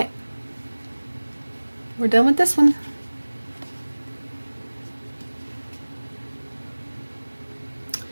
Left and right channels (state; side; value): inverted; both; correlation -1.00